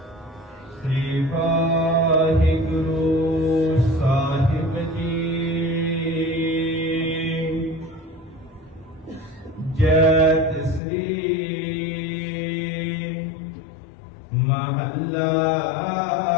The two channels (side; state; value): right; drops out; at 10.8 s